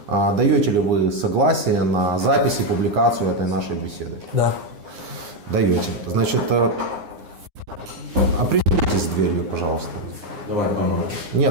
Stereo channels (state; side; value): late; left; 9.7 ms